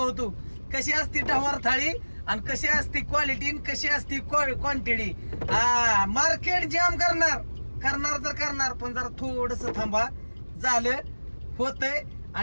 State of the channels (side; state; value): both; inverted; correlation -1.00